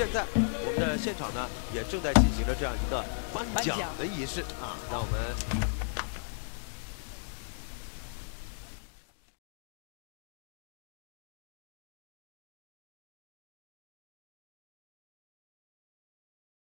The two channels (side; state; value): right; silent; digital silence